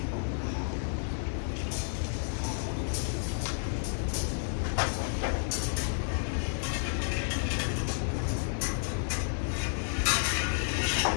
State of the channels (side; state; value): right; silent; digital silence